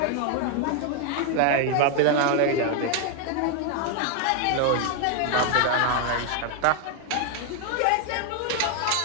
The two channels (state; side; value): different; both; correlation 0.01